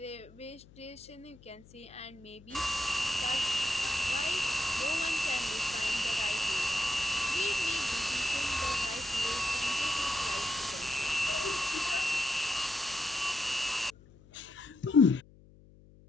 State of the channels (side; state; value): left; noise; hum, 24 dB below the sound